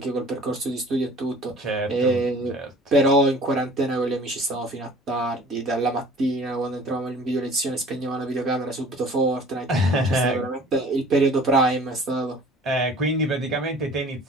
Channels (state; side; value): normal; both; correlation 0.49